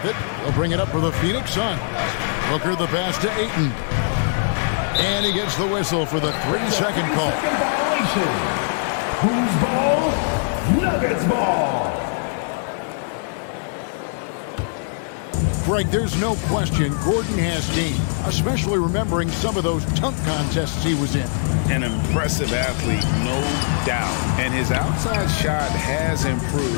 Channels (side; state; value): right; silent; digital silence